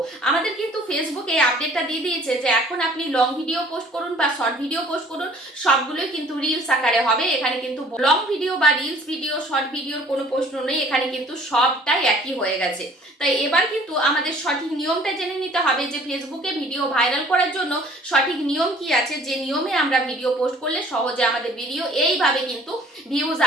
আমাদের কিন্তু ফেসবুকে আপডেটটা দিয়ে দিয়েছে যে এখন আপনি লং ভিডিও পোস্ট করুন বা শর্ট ভিডিও পোস্ট করুন, সবগুলোই কিন্তু রিলস আকারে হবে। এখানে কিন্তু লং ভিডিও বা রিলস ভিডিও শর্ট ভিডিওর কোনো প্রশ্ন নেই, এখানে কিন্তু সবটাই একই হয়ে গেছে। তাই এবার কিন্তু আমাদের সঠিক নিয়মটা জেনে নিতে হবে যে ফেসবুকে ভিডিও ভাইরাল করার জন্য সঠিক নিয়ম কি আছে, যে নিয়মে আমরা ভিডিও পোস্ট করলে সহজে আমাদের ভিডিও এইভাবে কিন্তু ভিউজ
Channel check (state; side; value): normal; both; correlation 0.54